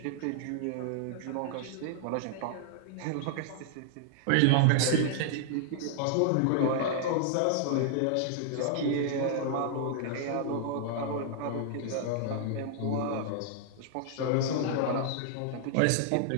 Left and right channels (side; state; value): both; different; correlation -0.01